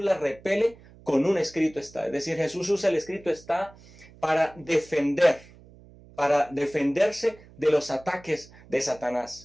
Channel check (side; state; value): right; noise; hum, 23 dB below the sound